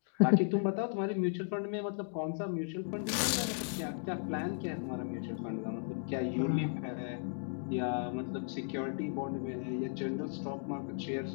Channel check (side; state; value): right; silent; digital silence